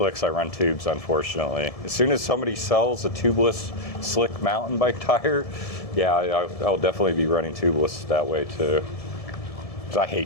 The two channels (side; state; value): right; late; 1.7 ms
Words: I run tubes, unfortunately. As soon as somebody sells a tubeless slick mountain bike tire, yeah, I'll definitely be running tubeless that way too. Because I